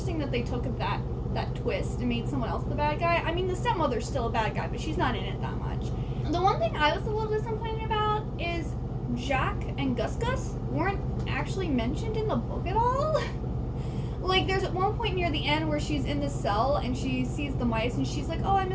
that they took that twist and made someone else the bad guy. I mean, the stepmother's still a bad guy, but she's not in it that much. The one thing I was a little disappointed about is Jack and Gus Gus weren't actually mentioned in the book at all. Like, there's at one point near the end where she's in the cell and she sees the mice and she's like, oh, I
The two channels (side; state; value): both; identical; correlation 1.00